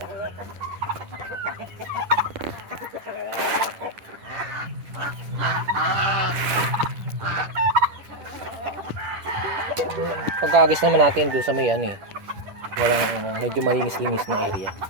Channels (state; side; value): late; left; 10 ms